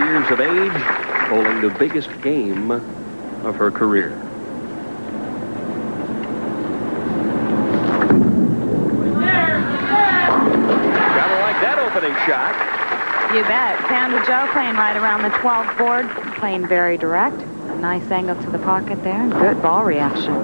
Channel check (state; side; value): inverted; both; correlation -1.00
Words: of age, bowling the biggest game of her career. Gotta like that opening shot. You bet. Sandra Jo playing right around the 12th board, playing very direct. A nice angle to the pocket there, and good ball reaction.